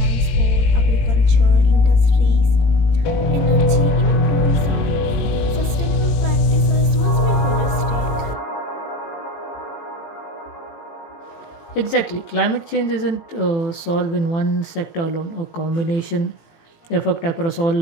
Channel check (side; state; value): right; late; 18 ms